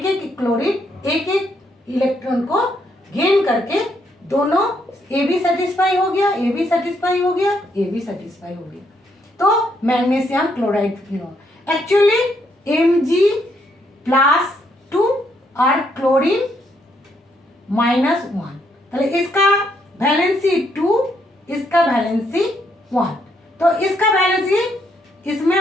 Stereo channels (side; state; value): both; normal; correlation 0.74